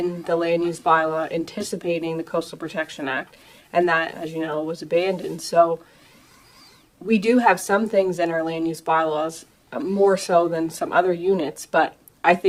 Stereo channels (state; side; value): identical; both; correlation 1.00